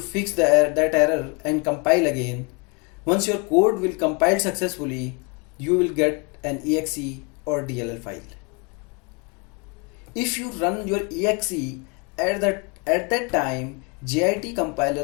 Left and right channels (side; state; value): right; quieter; 31.7 dB